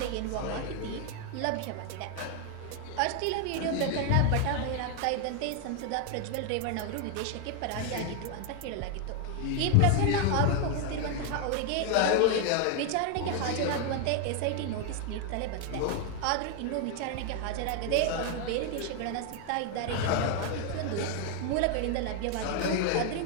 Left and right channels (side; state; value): both; different; correlation 0.00